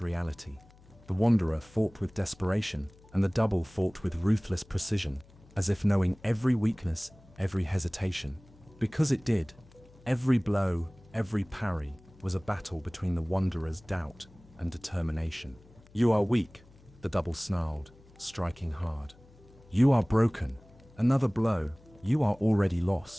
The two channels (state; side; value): noise; left; hum, 26 dB below the sound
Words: reality. The wanderer fought with desperation, and the double fought with ruthless precision, as if knowing every weakness, every hesitation. Because it did. Every blow, every parry was a battle between the wanderer's doubt and determination. "You are weak," the double snarled, striking hard. "You are broken." Another blow. "You are already